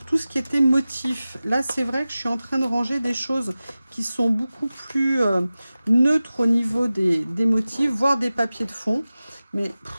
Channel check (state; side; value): inverted; both; correlation -0.96